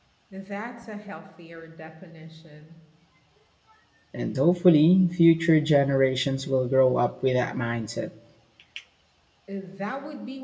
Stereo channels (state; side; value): identical; both; correlation 1.00